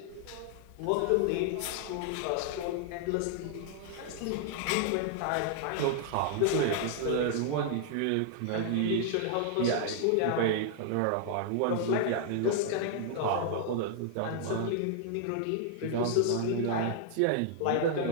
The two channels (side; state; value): both; different; correlation -0.01